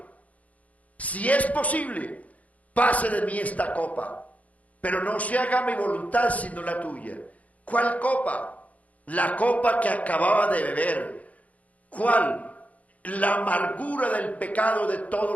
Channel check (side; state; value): right; late; 0.070 ms